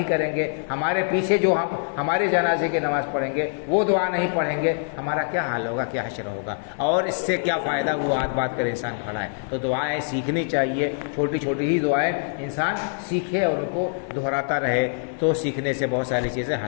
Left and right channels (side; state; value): right; silent; 62 dB below the other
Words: کریں گے، ہمارے پیچھے جو ہمارے جنازے کی نماز پڑھیں گے وہ دعا نہیں پڑھیں گے، ہمارا کیا حال ہوگا، کیا حشر ہوگا، اور اس سے کیا فائدہ وہ آج بات کرے انسان کھڑا ہے۔ تو دعائیں سیکھنی چاہیے، چھوٹی چھوٹی ہی دعائیں انسان سیکھے اور ان کو دہراتا رہے تو سیکھنے سے بہت ساری چیزیں